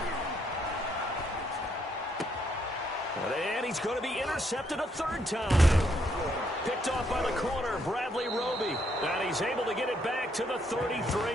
And he's going to be intercepted a 3rd time. Picked off by the corner, Bradley Roby. And he's He's able to get it back to the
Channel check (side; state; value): both; normal; correlation 0.73